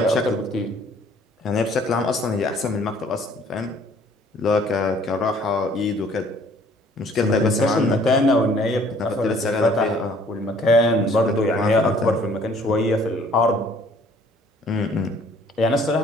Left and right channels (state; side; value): normal; both; correlation 0.58